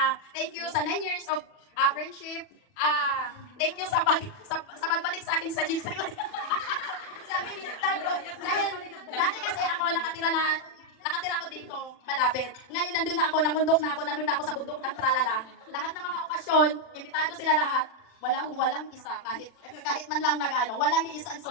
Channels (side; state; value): right; late; 40 ms